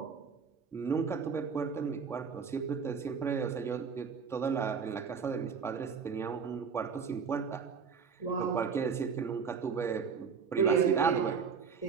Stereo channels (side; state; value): left; quieter; 6.1 dB